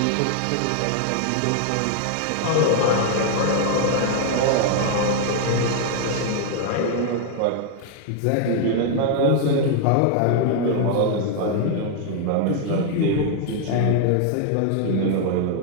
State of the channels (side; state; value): both; different; correlation 0.00